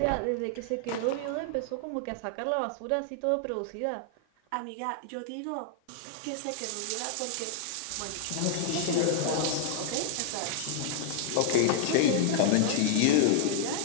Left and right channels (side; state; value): both; different; correlation 0.00